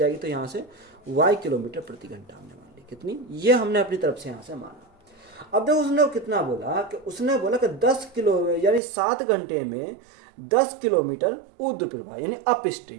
तो यहाँ से y किलोमीटर प्रति घंटा हमने मान ली। कितनी? ये हमने अपनी तरफ से यहाँ से माना। अब देखो उसने कितना बोला कि उसने बोला कि 10 किलो यानी 7 घंटे में 10 किलोमीटर ऊर्ध्व प्रवाह यानी अप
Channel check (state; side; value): drops out; left; at 8.8 s